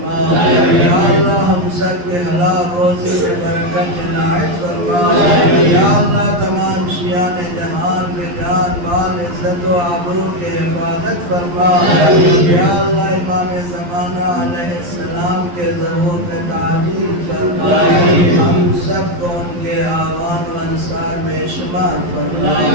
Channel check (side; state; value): left; late; 11 ms